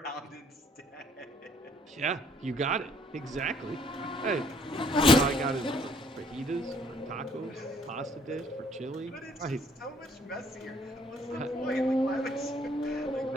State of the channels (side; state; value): both; normal; correlation 0.63